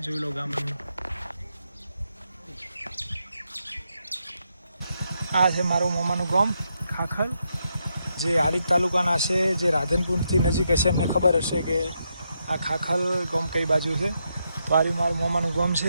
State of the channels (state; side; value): inverted; both; correlation -0.82